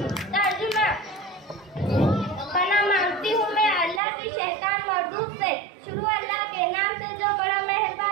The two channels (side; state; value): left; drops out; at 4.0 s